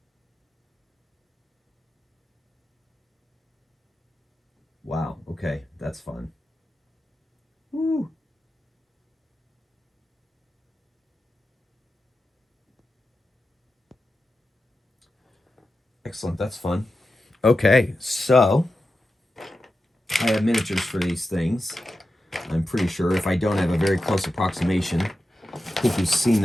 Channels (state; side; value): normal; both; correlation 0.91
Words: Wow, okay, that's fun. Woo. Excellent, that's fun. Okay, so I have miniatures for these things. I'm pretty sure. If I don't have a very close approximation, I think you've seen